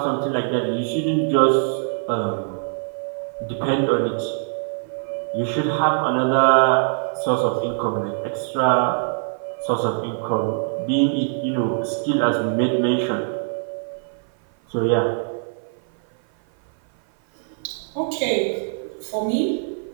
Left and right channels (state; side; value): silent; left; 55 dB below the other